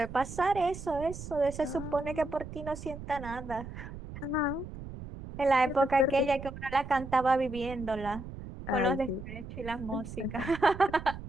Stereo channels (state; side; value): noise; right; rumble, 11 dB below the sound